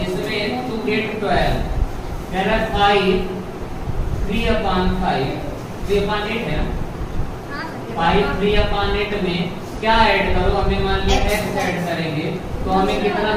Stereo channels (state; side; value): identical; both; correlation 1.00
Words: इसमें टू गेट 12 कह रहा है 5 3/5 3/8 है ना। 5 3/8 में क्या ऐड करो, हमें मान लिया x ऐड करेंगे तो हमें कितना